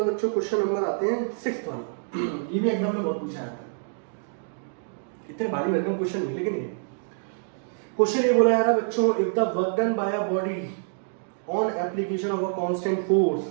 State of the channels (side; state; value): left; silent; digital silence